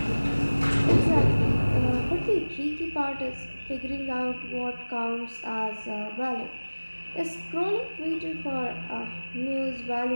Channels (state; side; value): inverted; both; correlation -1.00